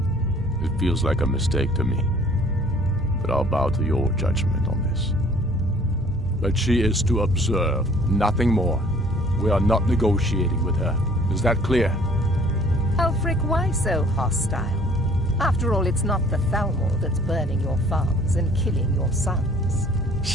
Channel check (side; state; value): both; normal; correlation 0.54